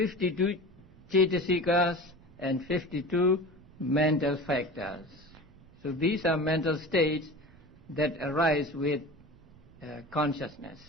Cetasikas and 52 mental factors. So these are mental states that arise with consciousness.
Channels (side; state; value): right; noise; rumble, 25 dB below the sound